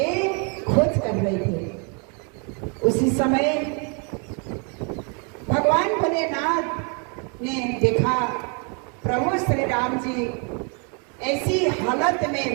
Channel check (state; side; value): quieter; left; 36.2 dB